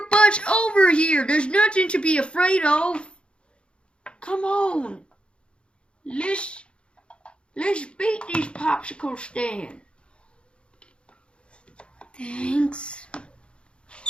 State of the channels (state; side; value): late; right; 0.057 ms